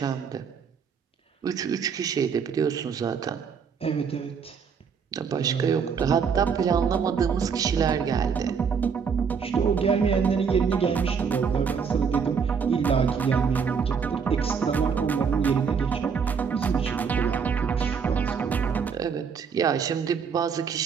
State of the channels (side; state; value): left; quieter; 6.3 dB